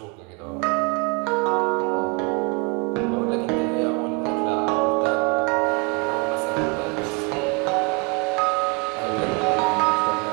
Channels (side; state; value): left; quieter; 31.1 dB